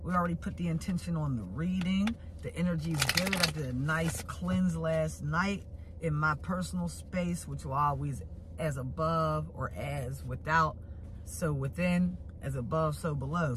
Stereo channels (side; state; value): both; identical; correlation 1.00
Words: already put the intention on the reading. The energy's good. I did a nice cleanse last night in my personal space, which will always as above or as without, so within, as above, so below.